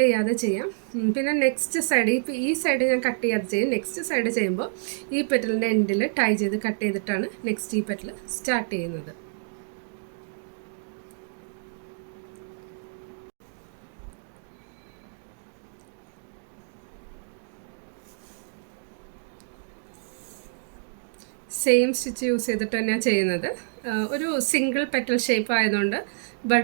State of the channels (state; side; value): silent; left; digital silence